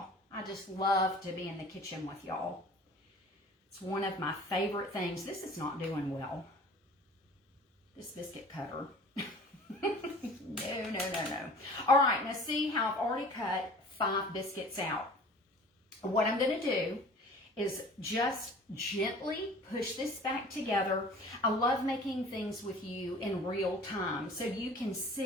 I just love to be in the kitchen with y'all. It's one of my favorite things. This is not doing well. This biscuit cutter. No, no, no, no. All right, now see how I've already cut 5 biscuits out. What I'm going to do is just gently push this back together. I love making things with you in real time so you can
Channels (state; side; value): normal; both; correlation 0.45